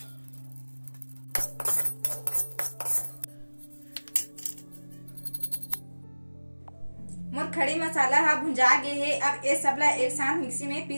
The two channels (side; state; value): both; inverted; correlation -1.00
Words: मोर खड़ी मसाला हा भुंजा गए है। अब ये सबला एक साथ मिक्सी में